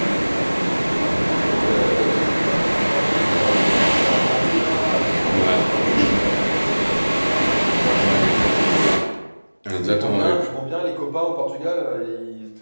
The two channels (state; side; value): inverted; both; correlation -1.00